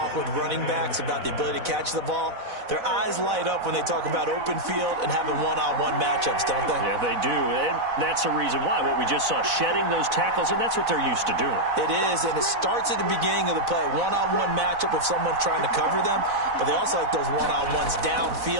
with running backs about the ability to catch the ball, their eyes light up when they talk about open field and having one-on-one matchups, don't they? Yeah, they do. And that's the reason why. What we just saw, shedding those tackles, and that's what they're used to doing. It is, and it starts at the beginning of the play. One-on-one matchup if someone's trying to cover them, but they also like those one-on-ones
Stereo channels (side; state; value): left; late; 4.0 ms